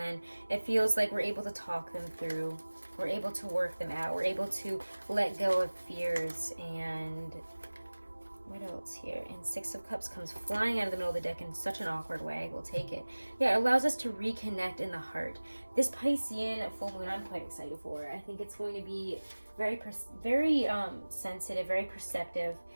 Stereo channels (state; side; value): inverted; both; correlation -1.00